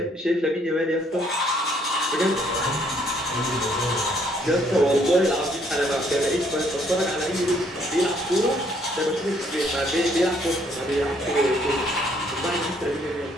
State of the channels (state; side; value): normal; both; correlation 0.66